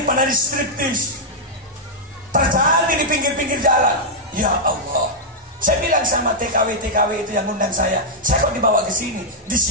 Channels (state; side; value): normal; both; correlation -0.05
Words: striptease terjadi di pinggir-pinggir jalan. Ya Allah. Saya bilang sama TKW itu yang undang saya kok dibawa ke sini? Di